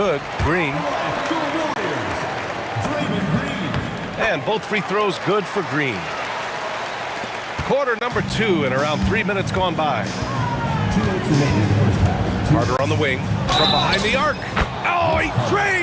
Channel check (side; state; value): both; identical; correlation 1.00